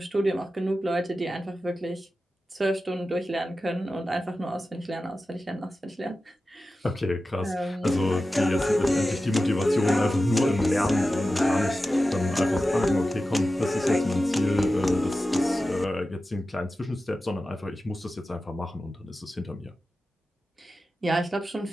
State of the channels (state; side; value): normal; both; correlation 0.94